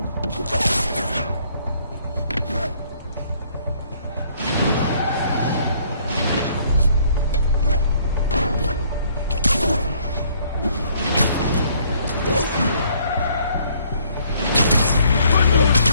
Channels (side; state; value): both; inverted; correlation -0.63